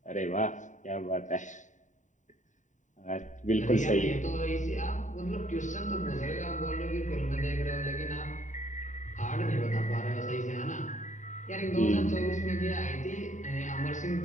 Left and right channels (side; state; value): right; late; 0.36 ms